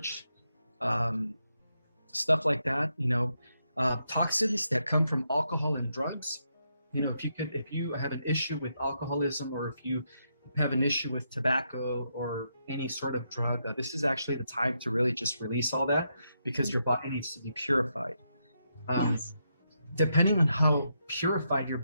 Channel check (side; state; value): both; inverted; correlation -0.81